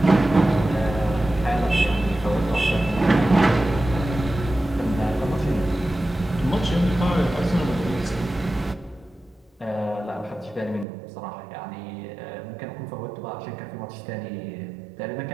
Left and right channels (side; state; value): left; drops out; at 10.9 s